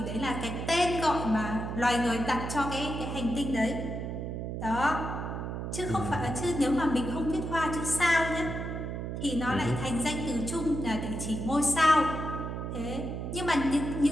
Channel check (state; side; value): noise; right; hum, 5 dB below the sound